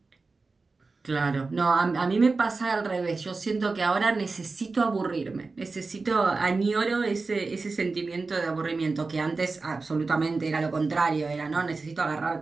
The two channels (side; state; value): left; quieter; 3.9 dB